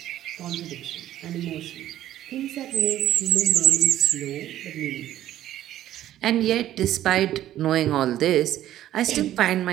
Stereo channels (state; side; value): quieter; left; 12.8 dB